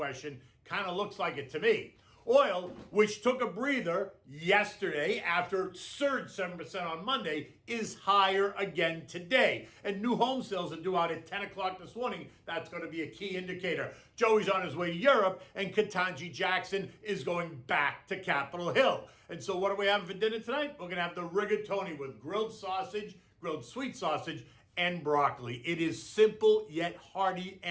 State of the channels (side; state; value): both; identical; correlation 1.00